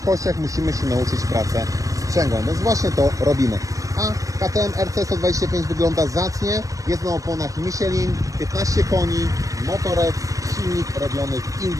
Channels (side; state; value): left; late; 0.16 ms